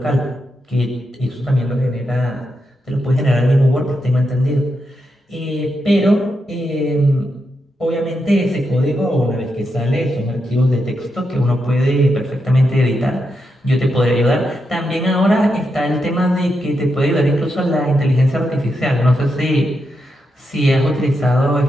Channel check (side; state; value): both; normal; correlation 0.85